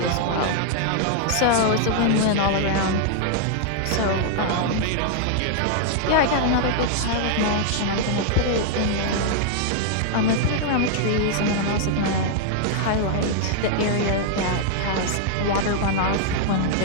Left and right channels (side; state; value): both; different; correlation -0.01